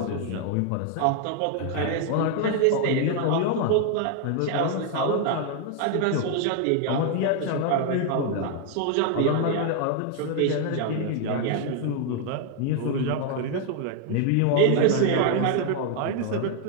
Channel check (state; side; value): different; both; correlation 0.01